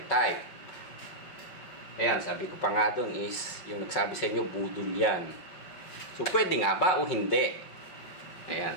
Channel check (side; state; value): right; late; 5.4 ms